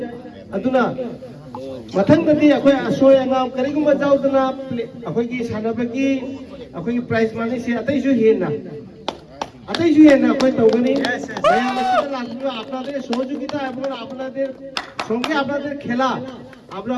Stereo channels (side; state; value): both; identical; correlation 1.00